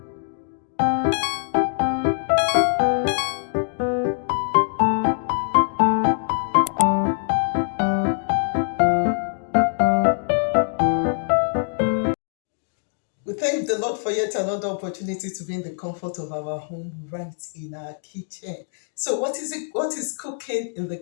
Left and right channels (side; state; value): right; silent; digital silence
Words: thank the Lord for yet another opportunity to be in the comfort of our home, right in our kitchen. So, what is it? What is cooking in the